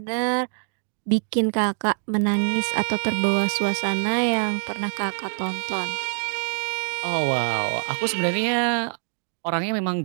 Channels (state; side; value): silent; left; digital silence